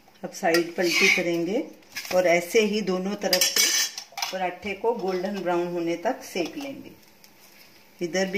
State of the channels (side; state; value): both; identical; correlation 1.00